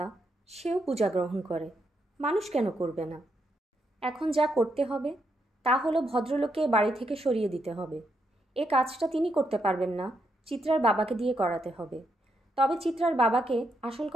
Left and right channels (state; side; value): normal; both; correlation 0.80